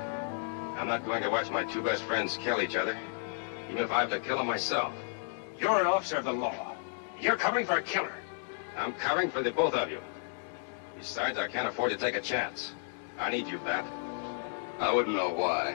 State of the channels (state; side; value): silent; right; digital silence